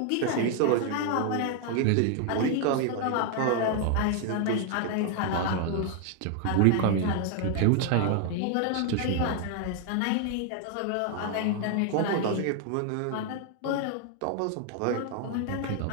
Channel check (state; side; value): different; both; correlation 0.00